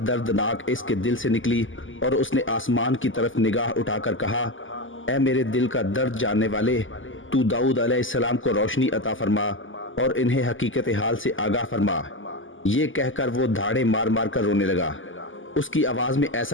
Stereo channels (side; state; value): right; late; 0.58 ms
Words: اس کے دل سے نکلی اور اس نے آسمان کی طرف نگاہ اٹھا کر کہا، اے میرے دل کا درد جاننے والے، تو داؤد علیہ السلام کو روشنی عطا فرما اور انہیں حقیقت حال سے آگاہ فرما۔ یہ کہہ کر وہ دھاڑے مار مار کر رونے لگا۔ اس کی آواز میں